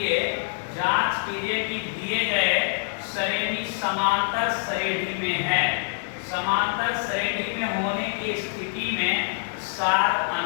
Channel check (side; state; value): right; silent; 61 dB below the other